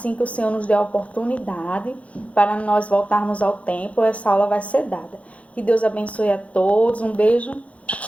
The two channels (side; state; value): right; late; 0.065 ms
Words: que o Senhor nos der a oportunidade para nós voltarmos ao templo, essa aula vai ser dada. Que Deus abençoe a todos, um beijo